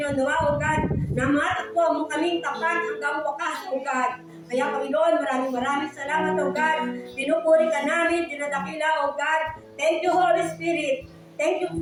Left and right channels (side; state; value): both; identical; correlation 1.00